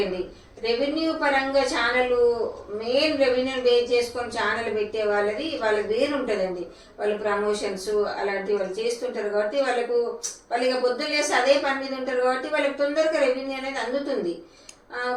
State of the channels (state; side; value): identical; both; correlation 1.00